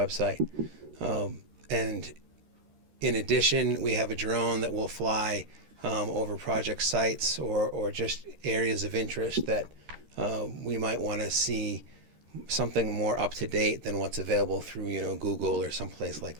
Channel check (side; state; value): left; late; 13 ms